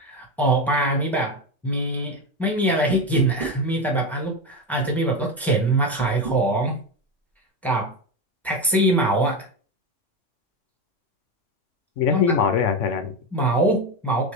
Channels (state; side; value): normal; both; correlation 0.16